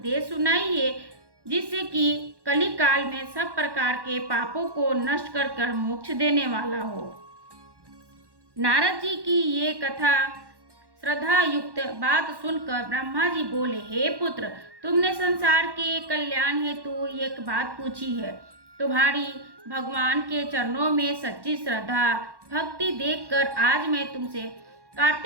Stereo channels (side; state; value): left; late; 1.1 ms